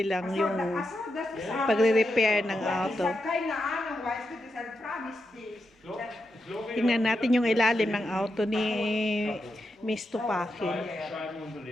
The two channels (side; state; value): both; normal; correlation 0.86